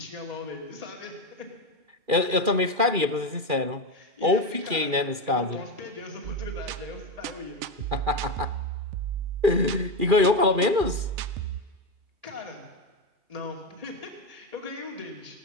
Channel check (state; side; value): late; left; 2.4 ms